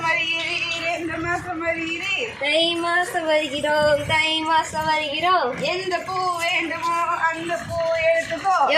வருகிறீர், எந்த மாசம் வருகிறீர்? தை மாசம் வருகிறோம், தை மாசம் வருகிறோம். எந்த பூ வேண்டுமோ அந்த பூ எடுத்துக்கோ.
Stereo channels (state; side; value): identical; both; correlation 1.00